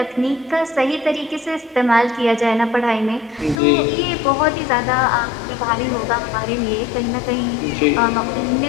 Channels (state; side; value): drops out; right; at 3.6 s